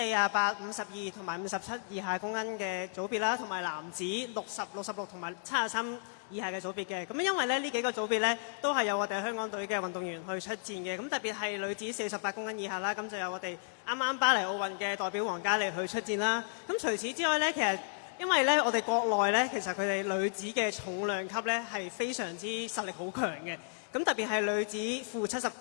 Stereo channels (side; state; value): right; silent; digital silence